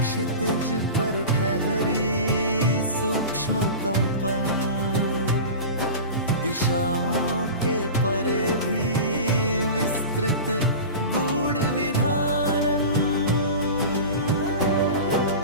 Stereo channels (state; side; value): inverted; both; correlation -0.31